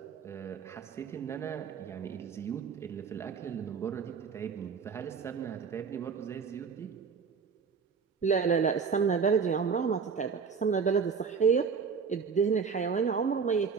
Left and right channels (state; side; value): quieter; left; 5.9 dB